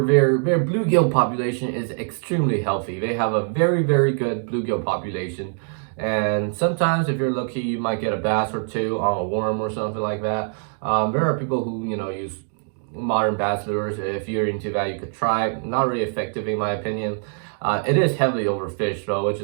their bluegill population is extremely healthy. They have a very good bluegill population. And sometimes, if you're lucky, you might get a bass or two on a worm or something like that. There are people who use modern bass lures. If you're into that, you could try. Not really effective in my opinion. It is heavily overfished though, which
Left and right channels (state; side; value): silent; left; 63 dB below the other